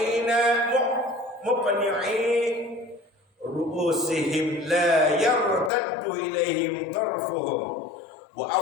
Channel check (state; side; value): drops out; right; at 5.7 s